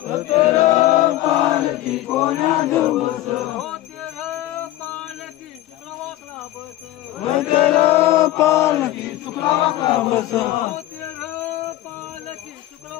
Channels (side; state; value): right; quieter; 15.0 dB